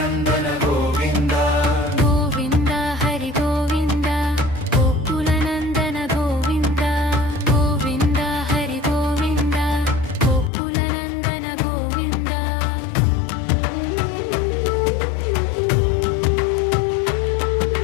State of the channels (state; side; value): drops out; right; at 10.5 s